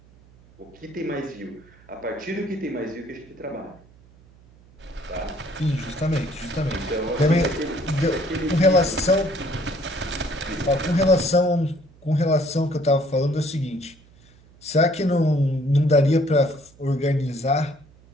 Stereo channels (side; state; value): right; noise; hum, 27 dB below the sound